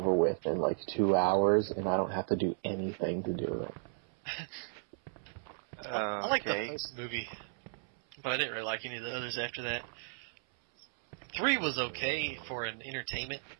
with in like 2 hours, and I don't have to do anything to do it. I like the first movie, but I didn't really like any of the others after that. 3 was okay for an entertainment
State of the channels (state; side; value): silent; left; 55 dB below the other